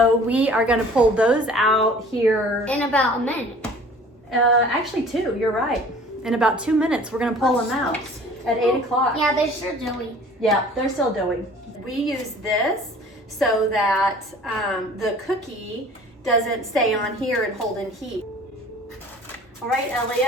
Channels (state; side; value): normal; both; correlation 0.48